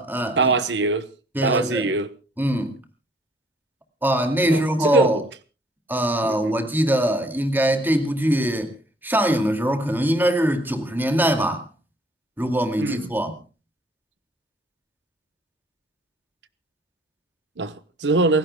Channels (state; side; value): normal; both; correlation 0.59